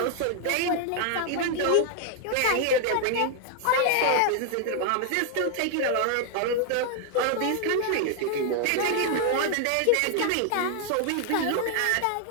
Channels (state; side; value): different; both; correlation 0.00